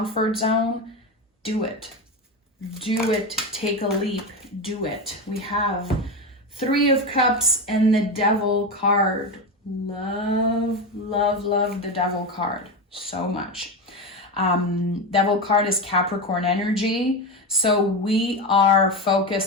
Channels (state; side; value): normal; both; correlation 0.17